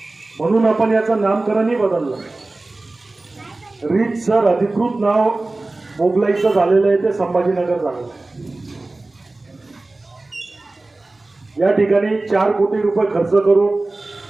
म्हणून आपण याचं नामकरणही बदललं. रीतसर अधिकृत नाव मोगलाईचं झालेलं आहे ते संभाजीनगर झालेलं आहे. या ठिकाणी 4 कोटी रुपये खर्च करून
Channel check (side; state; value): left; quieter; 3.1 dB